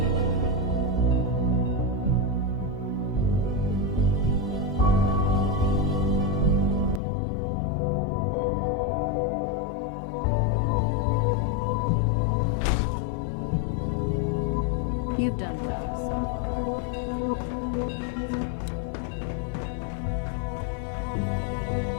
You've done well,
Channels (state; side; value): drops out; right; at 7.0 s